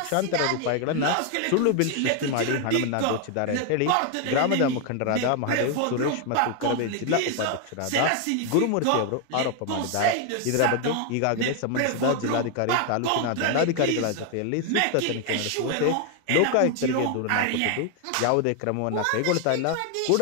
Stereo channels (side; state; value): both; different; correlation 0.01